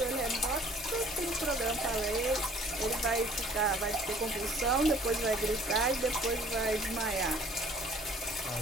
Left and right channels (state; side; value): normal; both; correlation 0.54